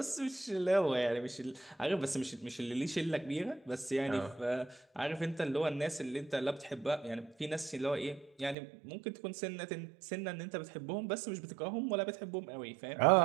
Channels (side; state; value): left; drops out; at 8.6 s